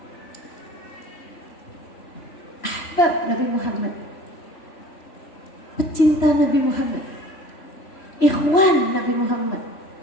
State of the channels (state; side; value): late; right; 3.0 ms